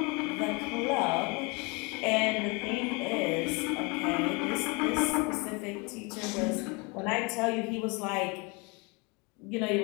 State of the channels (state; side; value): quieter; right; 29.4 dB